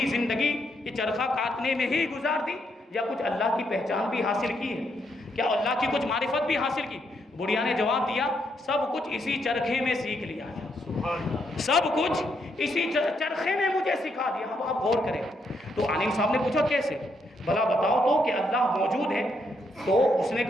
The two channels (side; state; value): both; normal; correlation 0.77